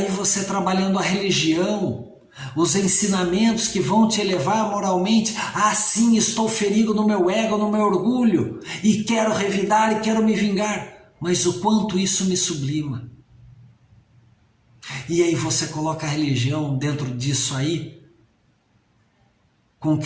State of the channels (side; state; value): both; identical; correlation 1.00